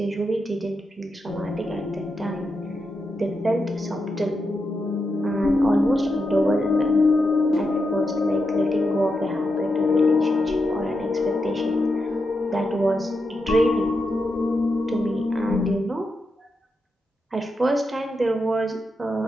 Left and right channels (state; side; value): normal; both; correlation 0.86